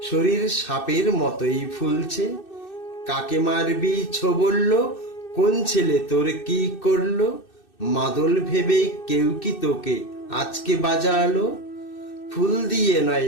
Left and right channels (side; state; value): right; late; 2.6 ms